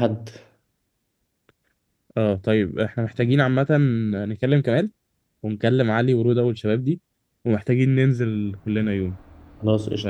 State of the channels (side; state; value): both; identical; correlation 1.00